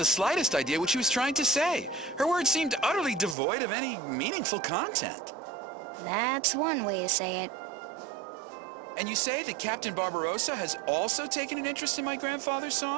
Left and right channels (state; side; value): drops out; left; at 3.4 s